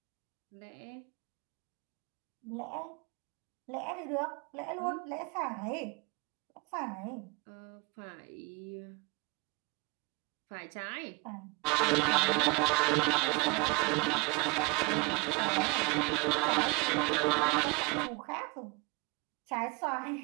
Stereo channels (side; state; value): left; quieter; 29.3 dB